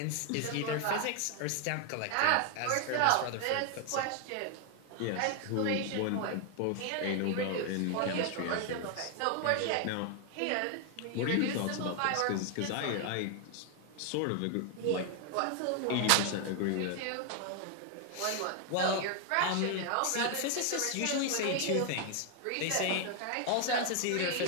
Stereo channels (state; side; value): different; both; correlation 0.00